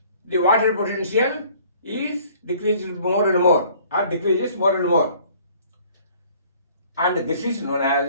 the water potential is decreased more and more, or decreases more and more. And this is known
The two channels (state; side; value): inverted; both; correlation -0.55